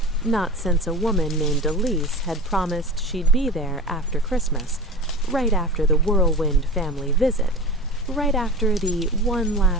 Not since a woman named Elise had promised she'd be there after Christmas, right after the whirlwind family visit, right after the one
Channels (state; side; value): normal; both; correlation 0.32